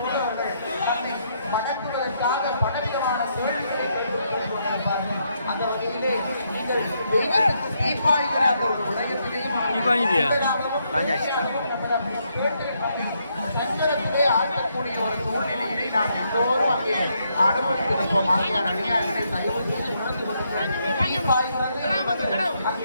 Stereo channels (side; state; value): both; inverted; correlation -0.76